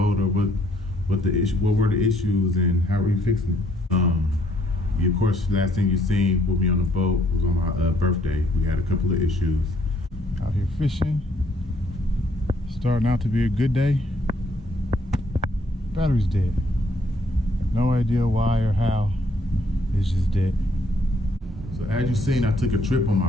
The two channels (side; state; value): both; normal; correlation 0.67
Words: or what were the issues, and how are you fixing it? Of course, last thing you seen with me on the boat was on my birthday. We had a couple of issues. Out here fishing, starting out to be a good day. Battery's dead. No idea why or how, it's just dead. So as you seen, I took a trip on my